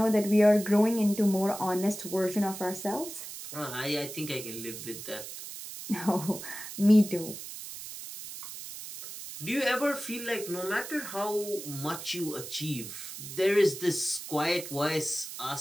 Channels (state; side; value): noise; right; hiss, 10 dB below the sound